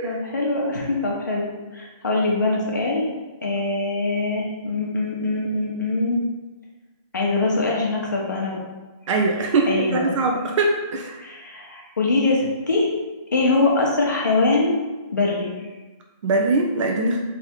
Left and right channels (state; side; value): inverted; both; correlation -0.51